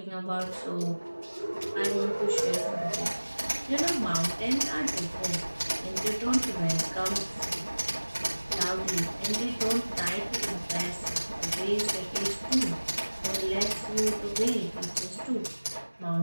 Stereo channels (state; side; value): inverted; both; correlation -1.00